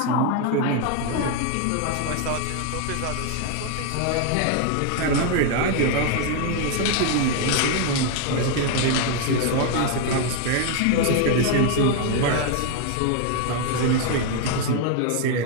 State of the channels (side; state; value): both; different; correlation 0.01